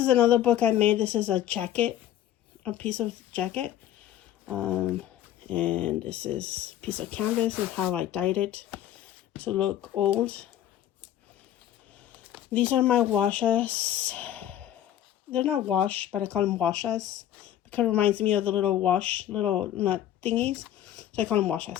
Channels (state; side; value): quieter; right; 11.8 dB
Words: another book I made. This is a piece of jacket. And this is a piece of canvas and how I dyed it to look old. These are my washes. They're not wash, but I call them washes because it reminds me of the little nut thingies. So I call them